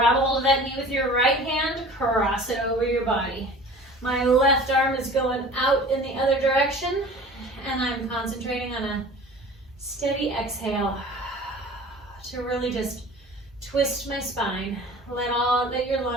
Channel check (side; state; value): both; normal; correlation 0.42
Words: a hold of that knee with your right hand, cross it over your body. My left arm is going out in the other direction, and I'm concentrating on a steady exhale to really just twist my spine. Let your